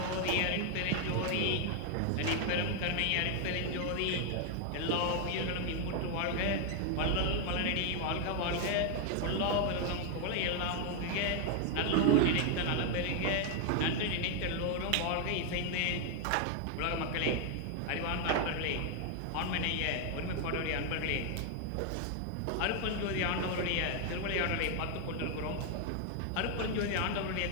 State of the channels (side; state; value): both; different; correlation 0.00